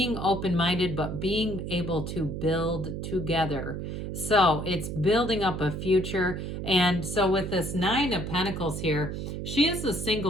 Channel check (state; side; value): noise; right; hum, 5 dB below the sound